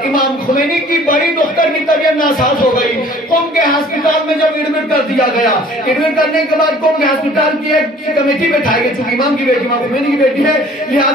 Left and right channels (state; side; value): normal; both; correlation 0.52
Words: امام خمینی کی بڑی دختر کی طبیعت ناساز ہو گئی، قم کے ہسپتال میں جب ایڈمٹ کر دیا گیا. ایڈمٹ کرنے کے بعد قوم کے ہسپتال کی ایک کمیٹی بٹھائی گئی, چونکہ امام کی بیٹی امام خمینی کی بیٹی ہے,